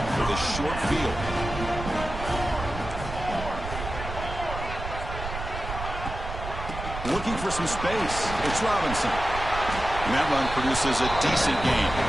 for the short field. Looking for some space. It's Robinson. And that run produces a decent gain.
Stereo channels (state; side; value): noise; right; rumble, 8 dB below the sound